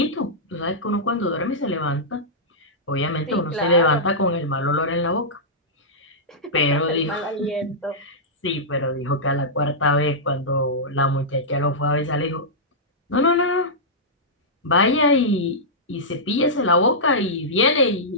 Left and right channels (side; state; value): both; normal; correlation -0.13